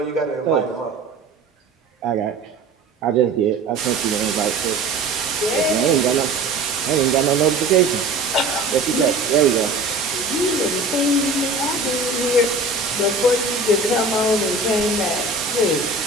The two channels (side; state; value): left; quieter; 3.3 dB